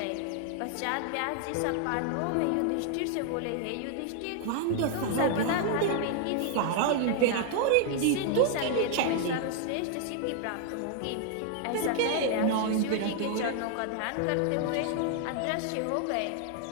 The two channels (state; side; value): different; both; correlation 0.00